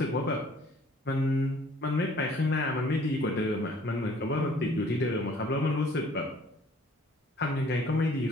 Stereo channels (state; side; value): normal; both; correlation 0.56